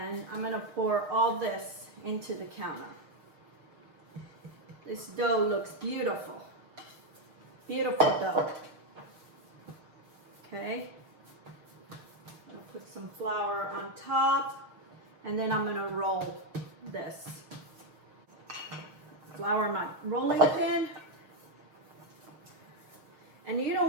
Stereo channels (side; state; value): left; late; 6.5 ms